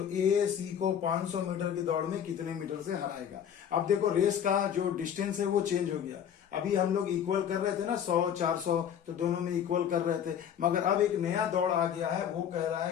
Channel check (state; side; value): quieter; right; 8.9 dB